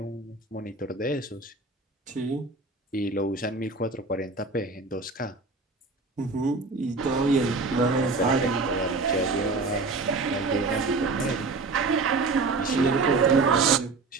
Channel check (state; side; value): quieter; left; 3.8 dB